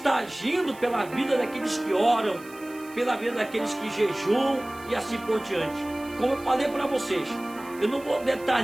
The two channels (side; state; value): right; noise; hiss, 22 dB below the sound